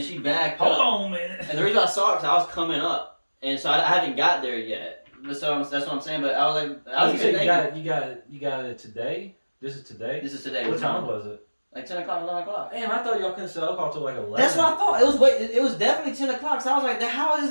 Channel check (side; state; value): both; inverted; correlation -1.00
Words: she backed Hold up. on, man. And the reason I saw it because I was coming up, and so I haven't got there yet. But so that's what I'm saying. But I was like, I was you even said thinking, you got it today. This is today. this is today. What time was it? Like 10 o'clock, 11 o'clock. Damn, I thought y'all couldn't sell alcohol till like 11. That's what I thought. It was definitely 10 o'clock. So I was like, how is